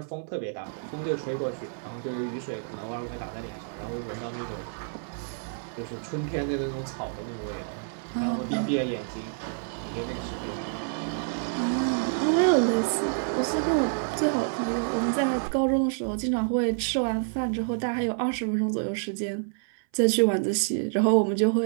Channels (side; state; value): left; silent; 57 dB below the other